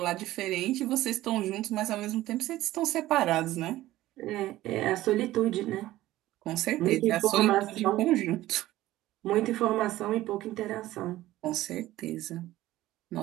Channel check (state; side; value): quieter; left; 15.7 dB